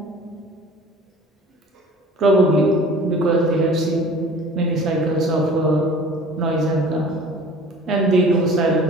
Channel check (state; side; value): normal; both; correlation 0.46